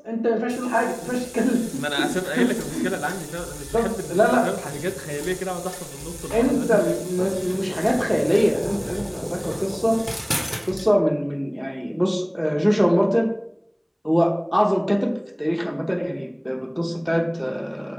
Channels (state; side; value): identical; both; correlation 1.00